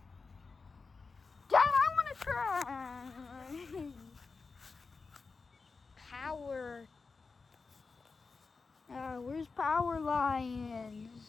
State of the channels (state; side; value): quieter; right; 4.4 dB